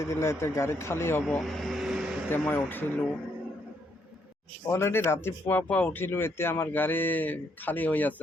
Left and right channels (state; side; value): normal; both; correlation 0.74